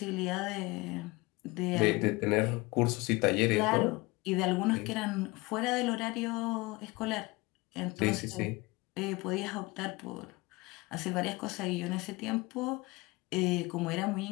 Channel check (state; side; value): quieter; right; 23.5 dB